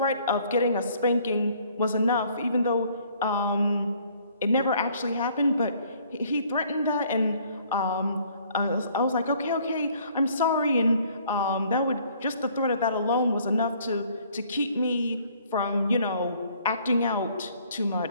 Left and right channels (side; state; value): both; inverted; correlation -0.60